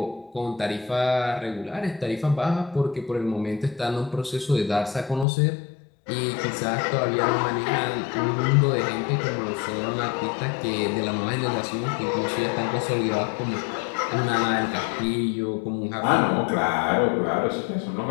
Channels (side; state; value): right; drops out; at 5.2 s